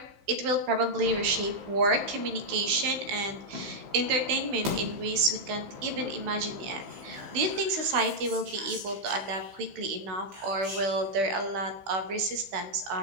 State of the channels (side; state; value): left; late; 15 ms